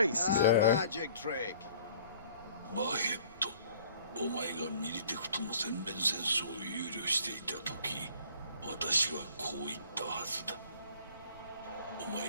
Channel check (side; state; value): both; inverted; correlation -0.53